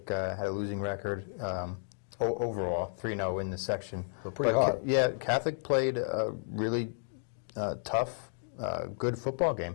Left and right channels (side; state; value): right; silent; digital silence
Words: had a losing record overall, 3-0 in the section. So pretty hot. Yeah, Catholic played a really tough, good football